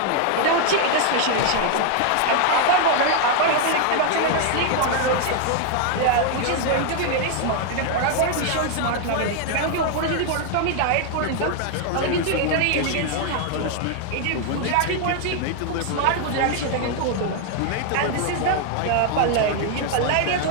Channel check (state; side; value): different; both; correlation 0.00